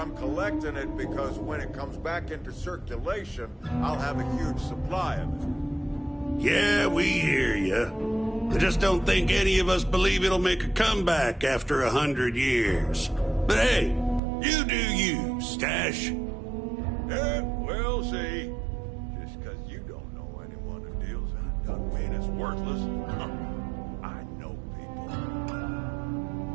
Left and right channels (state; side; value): drops out; left; at 14.2 s